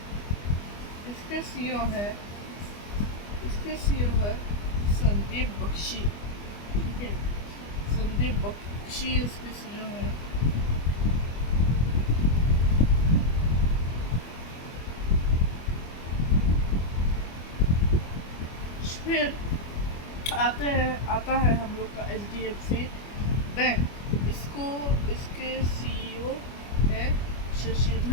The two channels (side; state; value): right; late; 25 ms